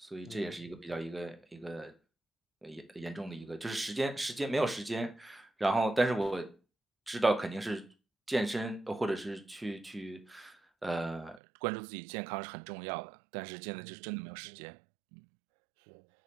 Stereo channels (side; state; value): left; drops out; at 11.4 s